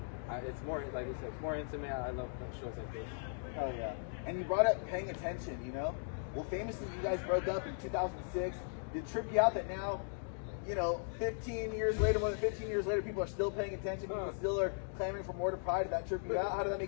it's more, like we said, it's more intimate. I love shows like this. Hell yeah. And you brought up paying attention, you know? Well, famously, you guys broke up in 2006. Did it trip you out that now, you know, 15 years later, more than 15 years later, people are still paying attention, people still are clamoring for more to Pride? Did that trip you out? How did that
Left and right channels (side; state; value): right; silent; digital silence